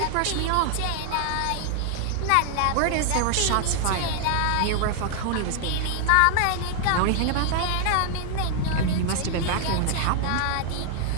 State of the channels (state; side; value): different; both; correlation 0.00